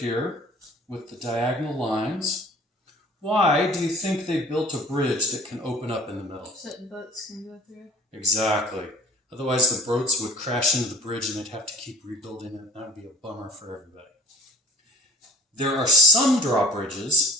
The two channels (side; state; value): both; normal; correlation 0.48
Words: with the diagonal lines. Why do you think they built a bridge that can open up in the middle? So that boats can go through. Exactly. Otherwise the boats would crash into the bridge and they'd have to keep rebuilding it. That would be a bummer for everybody. There are some